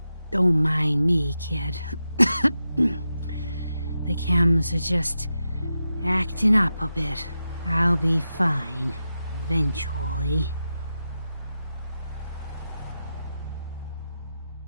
Don't mind me, kid. The chems are just acting up a bit. I'll be fine, eventually.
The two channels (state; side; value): inverted; both; correlation -0.90